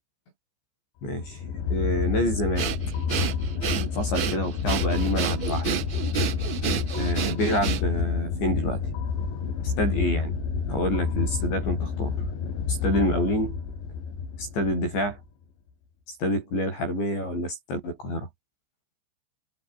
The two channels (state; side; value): late; right; 15 ms